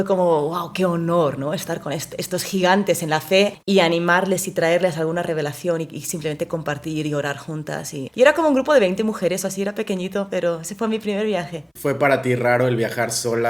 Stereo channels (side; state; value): both; identical; correlation 1.00